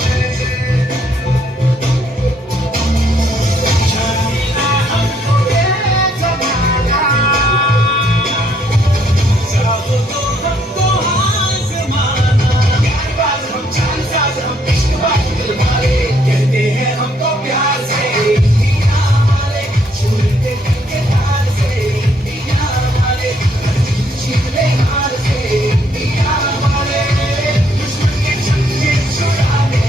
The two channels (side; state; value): both; normal; correlation 0.69